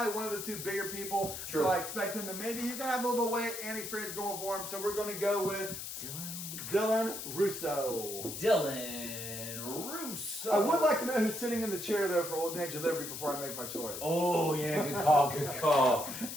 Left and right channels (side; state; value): left; noise; hiss, 7 dB below the sound